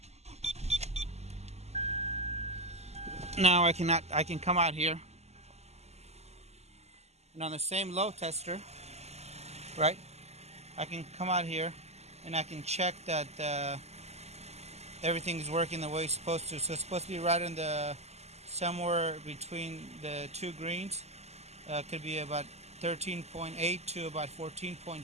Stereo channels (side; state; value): left; late; 0.31 ms